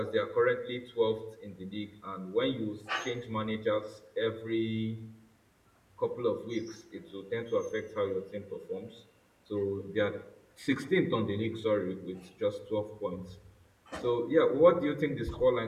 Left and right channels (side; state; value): both; identical; correlation 1.00